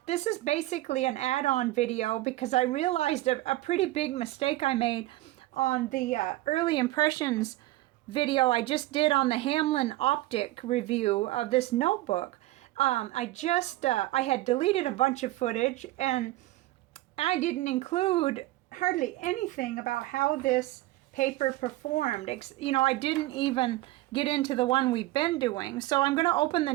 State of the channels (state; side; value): quieter; left; 17.5 dB